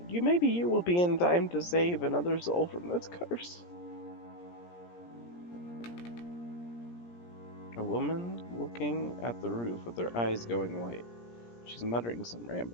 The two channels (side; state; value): right; late; 17 ms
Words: be in time to save another soul from this curse. A woman looking at the roof with her eyes going white. She's muttering some